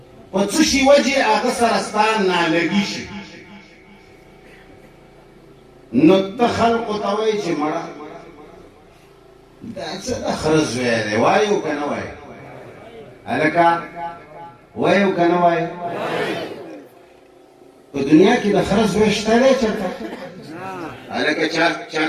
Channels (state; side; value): identical; both; correlation 1.00